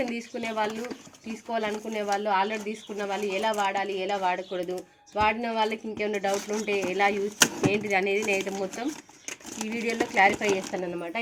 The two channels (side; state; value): both; identical; correlation 1.00